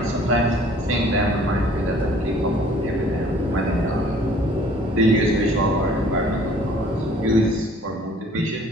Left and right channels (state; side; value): normal; both; correlation 0.55